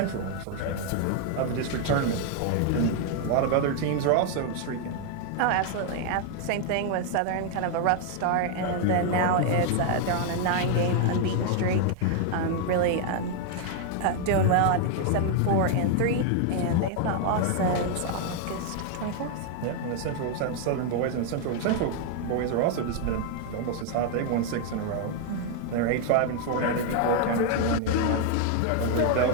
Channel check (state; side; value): different; both; correlation 0.00